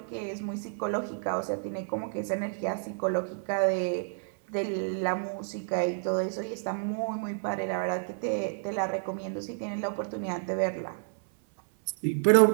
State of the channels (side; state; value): left; silent; 58 dB below the other